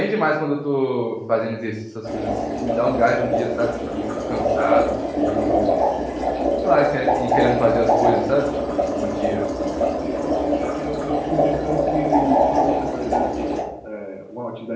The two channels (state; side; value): identical; both; correlation 1.00